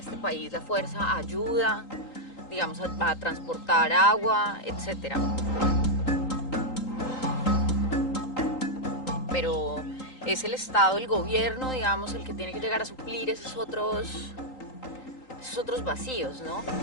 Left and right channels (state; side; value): late; right; 3.9 ms